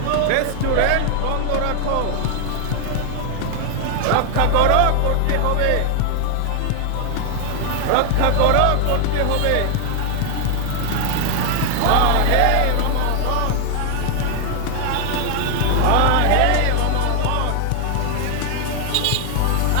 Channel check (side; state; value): both; different; correlation 0.00